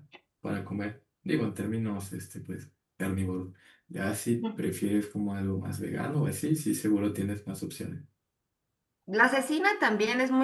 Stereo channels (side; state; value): both; identical; correlation 1.00